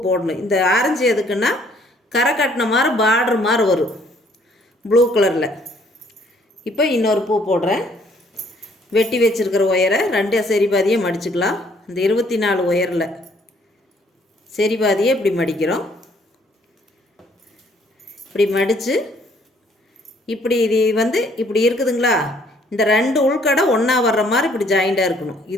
போடணும். இந்த ஆரஞ்சு எதுக்குன்னா கரை கட்டின மாதிரி பார்டர் மாதிரி வரும் ப்ளூ கலரில். இப்போ இன்னொரு பூ போடுறேன். வெட்டி வச்சுருக்கிற ஒயரை 2 சரி பாதியை மடிச்சுக்கலாம். இந்த 24 ஒயரில் சரி பாதியை இப்படி மடிக்கிறோம். இப்படி மடித்து இப்படி இது வந்து இப்படி இருக்குதுங்களா, இந்த 2 உள்கடை ஒன்றா வர்ற மாதிரி இப்படி ஜாயிண்டாக இருக்கணும்.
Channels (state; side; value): normal; both; correlation 0.63